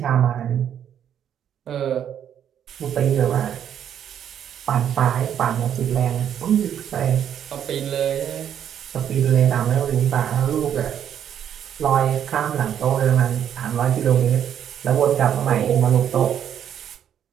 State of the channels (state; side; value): quieter; left; 9.4 dB